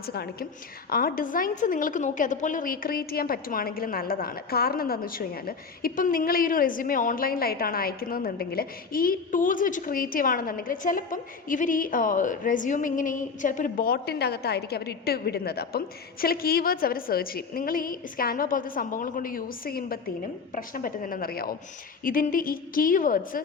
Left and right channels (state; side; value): quieter; right; 5.1 dB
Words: കാണിക്കും. ആ ഡിസൈൻസ് നിങ്ങൾക്ക് നോക്കി അതുപോലെ റീക്രിയേറ്റ് ചെയ്യാൻ പറ്റുവാണെങ്കിൽ നല്ലതാണ്. കാരണം എന്താണെന്ന് വെച്ച് കഴിഞ്ഞാൽ, ഇപ്പം നിങ്ങൾ ഈ ഒരു റെസ്യൂമേ ഓൺലൈനിലായിട്ടാണ് അയക്കുന്നതെന്നുണ്ടെങ്കിൽ ഈ ടൂൾസ് വെച്ച് ക്രിയേറ്റ് ചെയ്യുകയാണെന്നുണ്ടെങ്കിൽ ചിലപ്പം ഇവർ ഈ റെസ്യൂമേ ഇങ്ങനെ ചിലപ്പോൾ ഒരു ബോട്ടിൻ്റെ അകത്തായിരിക്കും അവർ ഇട്ട് വിടുന്നത്. അപ്പം ചില കീവേഡ്സ് അവർ സെർച്ച് ചെയ്യും. നിങ്ങൾ ഈ സ്കാൻവ പോലത്തെ സംഭവങ്ങൾ കൊണ്ട് യൂസ് ചെയ്യുമ്പോഴത്തേനും പ്രശ്നം പറ്റുന്നതെന്നറിയാവും, ഇതിൻ്റെ ഈ കീവേഡ്സ്